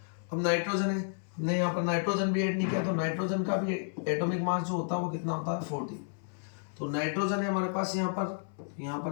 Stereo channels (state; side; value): silent; right; 57 dB below the other